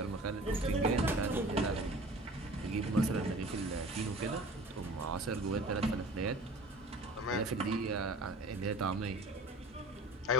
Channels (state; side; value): normal; both; correlation 0.43